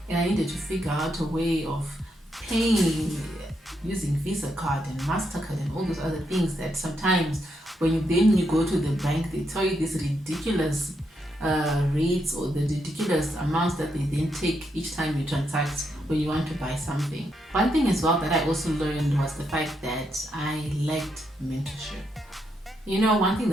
and I needed to figure out a way of paying using Visa card and MasterCard and all those other things that sometimes when you go to the bank, they tell you these ridiculous rates or the ridiculous amounts that they then take each time you transact when you want to buy something. One thing as well that I also learned was the fact that I lacked mentorship. One thing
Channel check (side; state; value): both; normal; correlation 0.80